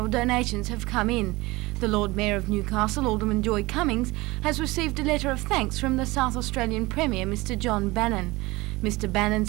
donations have come in. The Lord Mayor of Newcastle, Alderman Joy Cummings, has received a letter of thanks from the South Australian Premier, Mr John Bannon. Mr Bannon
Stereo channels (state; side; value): quieter; left; 21.6 dB